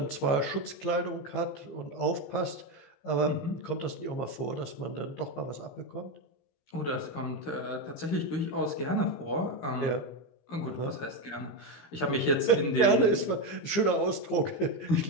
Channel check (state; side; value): late; right; 15 ms